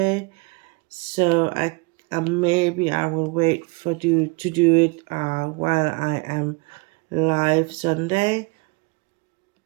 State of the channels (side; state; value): left; quieter; 28.2 dB